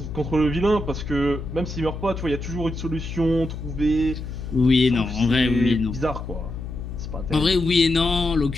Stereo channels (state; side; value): noise; left; hum, 8 dB below the sound